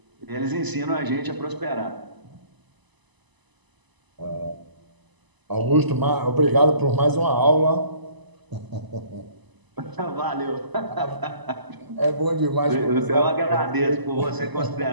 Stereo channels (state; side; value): late; left; 1.0 ms